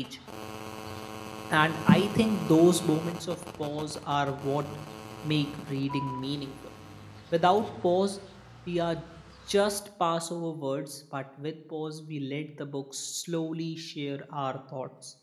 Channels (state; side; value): identical; both; correlation 1.00